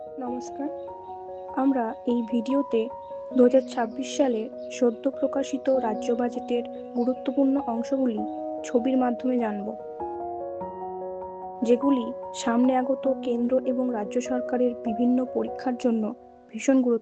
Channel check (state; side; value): identical; both; correlation 1.00